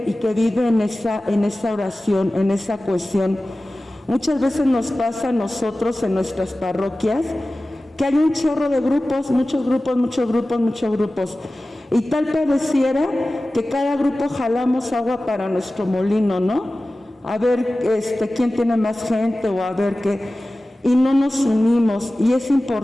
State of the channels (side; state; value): both; normal; correlation 0.96